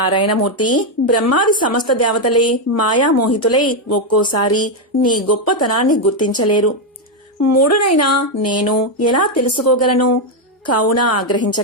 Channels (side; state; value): both; normal; correlation 0.03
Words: బ్రహ్మాది సమస్త దేవతలే మాయామోహితులై ఒక్కోసారి నీ గొప్పతనాన్ని గుర్తించలేరు. మూడునైనా నేను ఎలా తెలుసుకోగలను? కావున